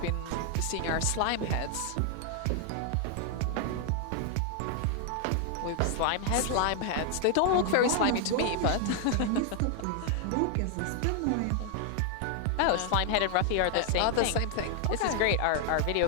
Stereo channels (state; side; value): different; both; correlation 0.00